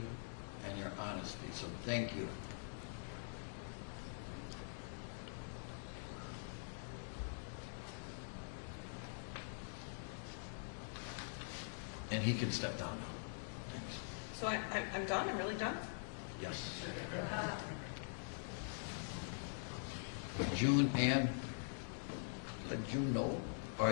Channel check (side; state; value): right; silent; digital silence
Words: and your honesty, so thank you. And he can step down now. Thanks. So I'm done? I'm really done? Yes. June and let June know. All